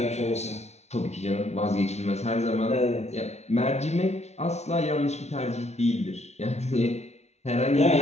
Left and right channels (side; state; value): right; late; 0.32 ms